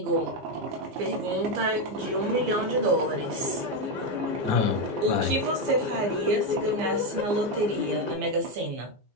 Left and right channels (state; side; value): late; left; 15 ms